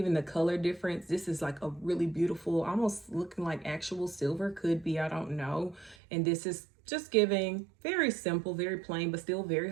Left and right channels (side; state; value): left; drops out; at 6.0 s